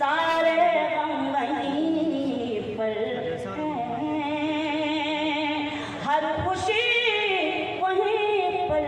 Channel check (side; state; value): both; identical; correlation 1.00